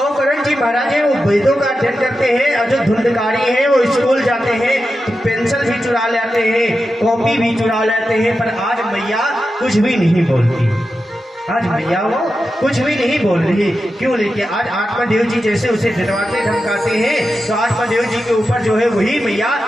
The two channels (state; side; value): normal; both; correlation 0.90